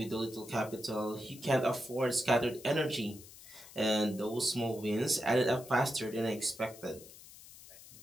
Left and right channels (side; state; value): left; noise; hiss, 18 dB below the sound